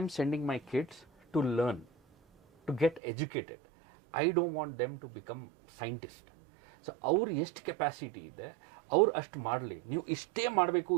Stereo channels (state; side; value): drops out; left; at 3.0 s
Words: sending my kids to learn, to get educated. I don't want them to become scientist. So ಅವ್ರು ಎಷ್ಟು ಕೆಪಾಸಿಟಿ ಇದೆ ಅವ್ರು ಅಷ್ಟು ಮಾಡಲಿ. ನೀವು ಇಷ್ಟೇ